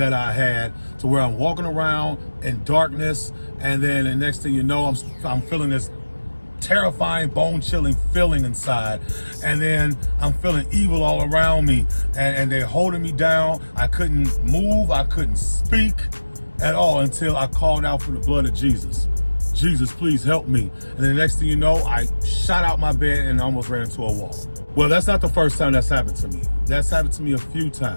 I had to where I'm walking around in darkness, and then the next thing you know, I'm feeling this terrifying, bone-chilling feeling inside, and then I'm feeling evil all around me, and they're holding me down. I couldn't move, I couldn't speak at all until I called out for the blood of Jesus. Jesus, please help me. And then the next thing you know, I shot out my bed and almost ran into a wall. Well, that's not the first time that's happened to me. That's happened to me a few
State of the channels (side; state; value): both; inverted; correlation -1.00